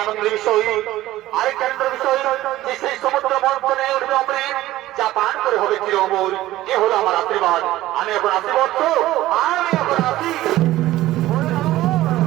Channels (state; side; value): quieter; left; 15.7 dB